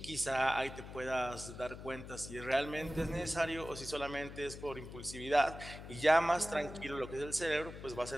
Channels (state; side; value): noise; left; hum, 12 dB below the sound